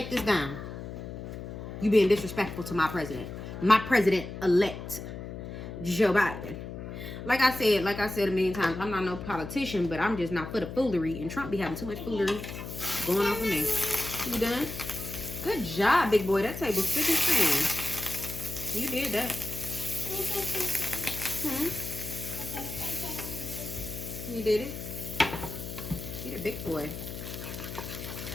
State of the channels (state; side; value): noise; left; hum, 9 dB below the sound